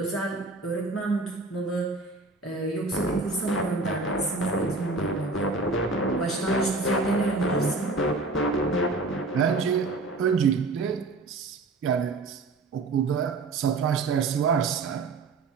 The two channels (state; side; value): quieter; left; 3.5 dB